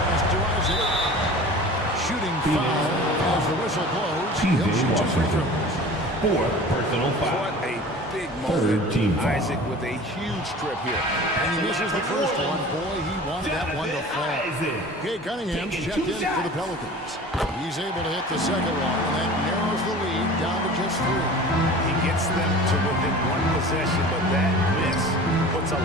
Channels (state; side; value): normal; both; correlation 0.40